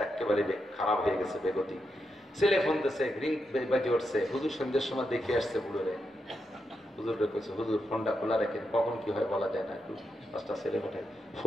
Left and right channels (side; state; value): both; normal; correlation 0.85